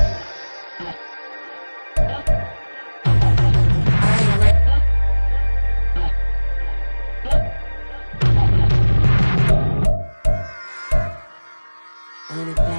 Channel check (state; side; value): inverted; both; correlation -1.00